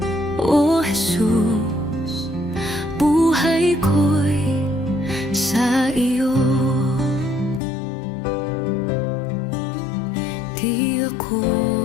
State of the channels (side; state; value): right; drops out; at 7.6 s